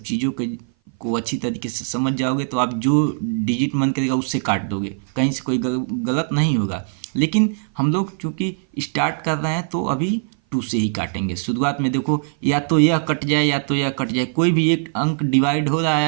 चीज़ों को अच्छी तरीके से समझ जाओगे, तो आप जो डिजिट मन करेगा उससे काट दोगे, कहीं से कोई गलत नहीं होगा। लेकिन हम लोग चूँकि स्टार्ट कर रहे हैं तो अभी 2 से ही काटेंगे। शुरुआत में देखो, या तो यह कट जाए या तो यह कट जाए, कोई भी एक अंक डिवाइड हो रहा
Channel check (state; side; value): silent; left; 58 dB below the other